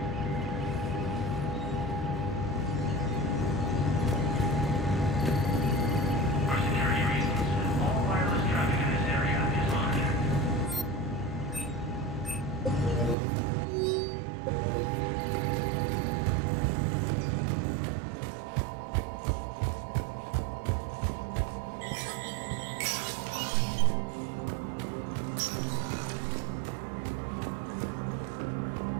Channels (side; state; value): left; drops out; at 13.2 s